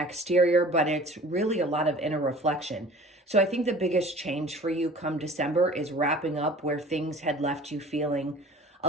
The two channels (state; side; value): normal; both; correlation 0.46